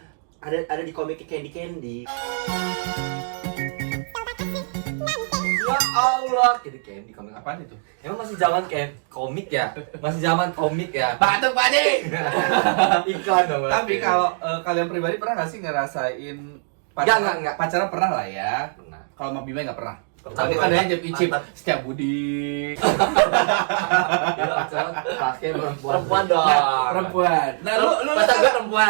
Ada di komik Candy. Ya Allah, Candy komik apa? Apaan itu? Emang masih zaman komik ya? Masih zaman komik ya? Batuk Pak Ade. Iklan dong. Tapi kalau kalian pribadi pernah nggak sih ngerasain Enggak. pacaran pernah lah ya? Pernah. Kalau sama Bima nggak pernah. Pernah. Tapi kan ada yang icip Mantap. setiap Budi. pakai Perempuan dong. Perempuan. Nah, lu pacar gue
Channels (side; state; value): left; silent; digital silence